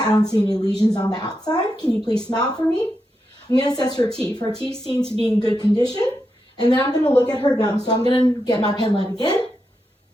I don't see any lesions on the outside. Can you please smile for me? I'm going to assess her teeth. Her teeth seem to be in good condition. And then I'm going to look at her gums. So I'm going to get my pen light again.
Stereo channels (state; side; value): normal; both; correlation 0.86